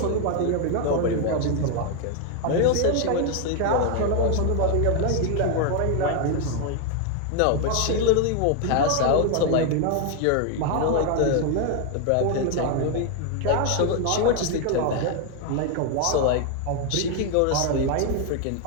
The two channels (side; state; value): both; different; correlation 0.01